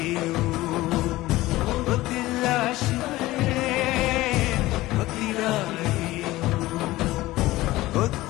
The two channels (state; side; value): quieter; right; 17.8 dB